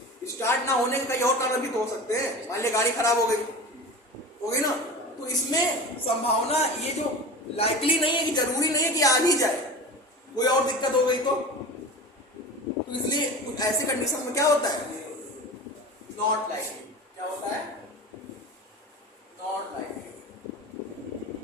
स्टार्ट ना होने का कई और कारण भी तो हो सकते हैं। मान लिया गाड़ी खराब हो गई ना, तो इसमें संभावना ये जो लाइकली नहीं है कि जरूरी नहीं है कि आ ही जाए, कोई और दिक्कत हो गई तो इसलिए कुछ ऐसे कंडीशन में क्या होता है, नॉट लाइकली। क्या होता है, नॉट लाइकली।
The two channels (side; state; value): both; normal; correlation 0.32